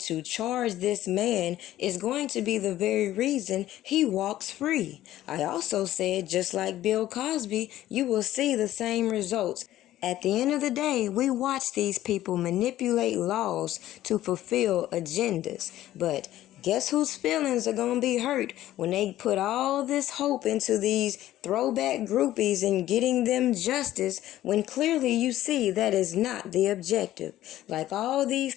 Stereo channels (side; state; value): right; quieter; 13.9 dB